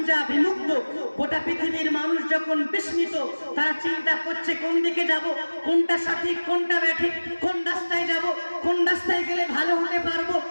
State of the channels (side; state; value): both; inverted; correlation -1.00